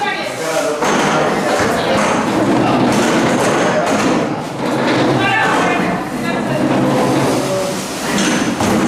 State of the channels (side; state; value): both; identical; correlation 1.00